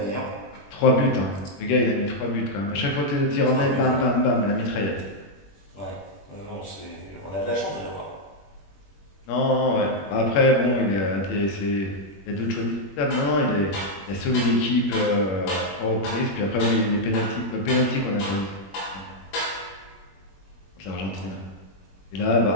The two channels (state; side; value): late; right; 21 ms